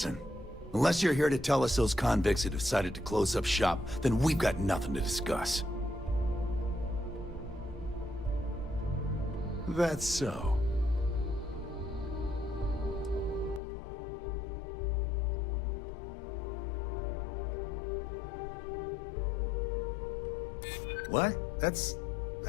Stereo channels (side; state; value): right; drops out; at 13.6 s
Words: unless you're here to tell us those convicts have decided to close up shop, then we've got nothing to discuss. That's so. What? That's